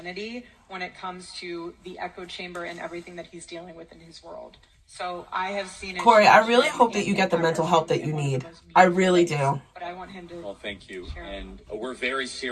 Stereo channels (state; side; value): identical; both; correlation 1.00